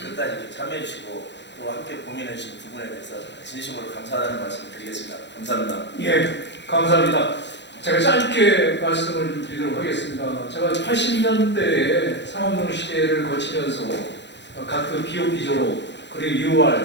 이렇게 참여해 주시고 또 함께 고민해 주신 부분에 대해서 진심으로 감사하다는 말씀 드리겠습니다. 감사합니다. 예, 감사합니다. 제가 짧게 말씀을 드리도록 하겠습니다. 제가 80년대에 상업농 시대를 거치면서 각급 BOP 졸업, 그리고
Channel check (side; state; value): right; late; 0.52 ms